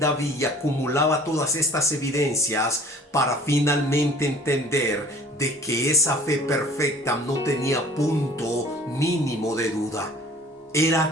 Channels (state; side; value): normal; both; correlation 0.49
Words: y acumulaba todas estas evidencias para finalmente entender de que esa fe perfecta no tenía punto mínimo de duda.